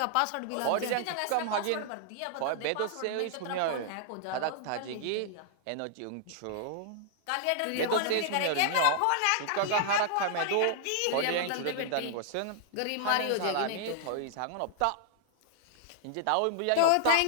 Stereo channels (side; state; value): both; different; correlation -0.01